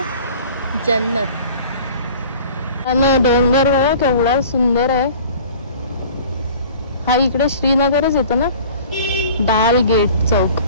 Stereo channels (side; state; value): both; inverted; correlation -0.46